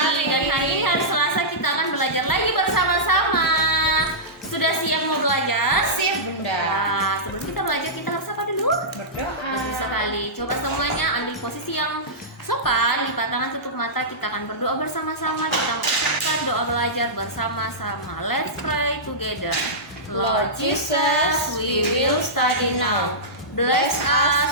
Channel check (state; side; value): normal; both; correlation -0.14